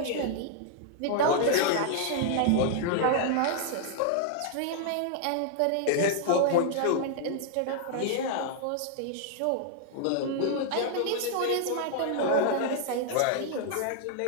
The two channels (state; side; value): different; both; correlation -0.01